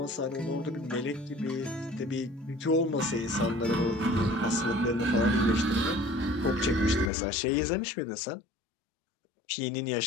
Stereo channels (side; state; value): right; drops out; at 7.1 s